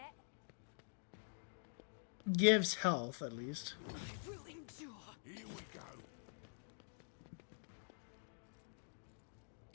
gives health at least. I will endure. Here we go.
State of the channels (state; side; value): silent; right; digital silence